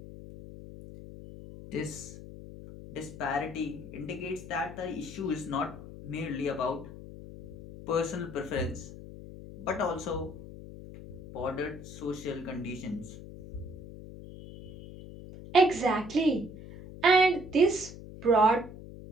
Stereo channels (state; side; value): noise; left; hum, 14 dB below the sound